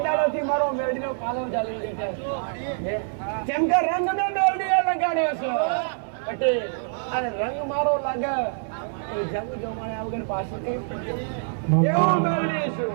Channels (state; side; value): silent; left; 58 dB below the other